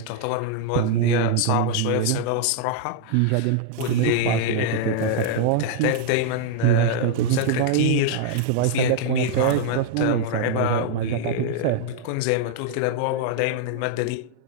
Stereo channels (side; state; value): both; different; correlation -0.01